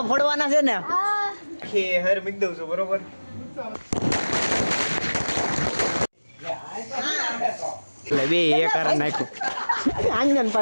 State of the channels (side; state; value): both; inverted; correlation -1.00